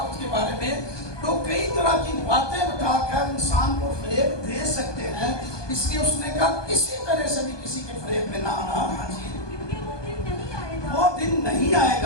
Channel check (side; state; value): right; late; 1.2 ms